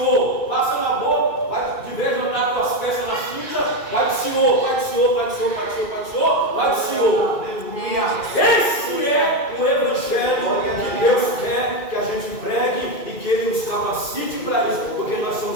Passa na boca, vai de vez em andar com as peças na cinta, vai do Senhor, vai do Senhor, vai do Senhor, vai do Senhor, vai do Senhor, vai do Senhor. Esse é o evangelho que Deus quer que a gente pregue e que Ele nos capacite para isso, porque nós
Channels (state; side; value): late; right; 2.4 ms